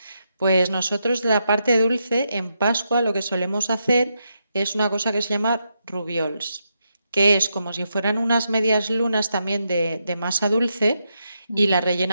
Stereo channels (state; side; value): inverted; both; correlation -0.83